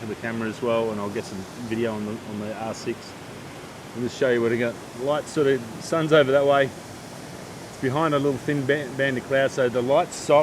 of the camera as well, and I'll get some video on the R6 and just show you what I got. Light sort of, sun's over that way. It's behind a little thin band of cloud, so the light's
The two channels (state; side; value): identical; both; correlation 1.00